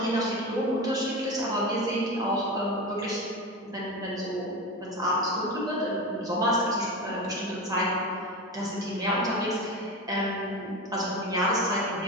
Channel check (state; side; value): normal; both; correlation 0.23